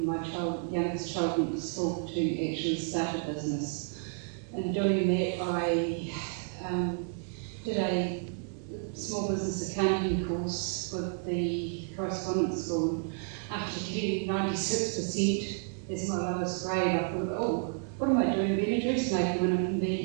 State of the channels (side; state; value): left; silent; 57 dB below the other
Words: my youngest child went to school to actually start a business. In doing that, I did a small business accounting course with the correspondence school. After getting 96% as my lowest grade, I thought, oh, what am I doing being a dressmaker when I can